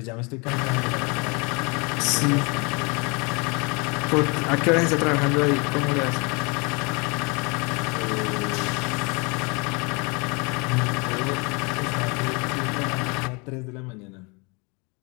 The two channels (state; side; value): quieter; right; 30.0 dB